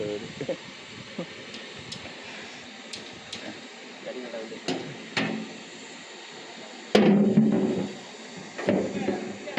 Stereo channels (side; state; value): both; identical; correlation 1.00